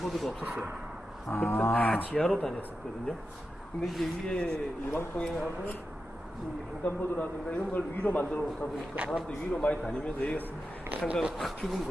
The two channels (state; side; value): normal; both; correlation 0.90